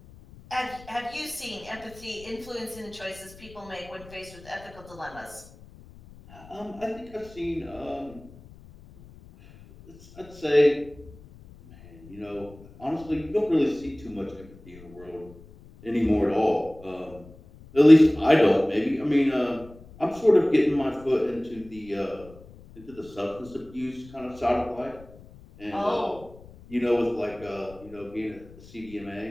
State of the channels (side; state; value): left; noise; rumble, 21 dB below the sound